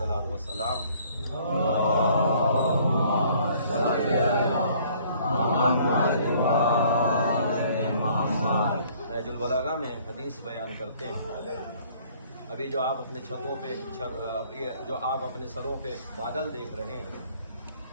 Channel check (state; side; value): inverted; both; correlation -0.59